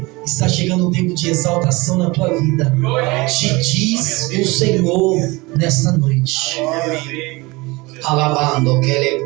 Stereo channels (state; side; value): quieter; left; 23.5 dB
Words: está chegando um tempo de exaltação na tua vida. Te diz o Senhor nesta noite. Alabando que ele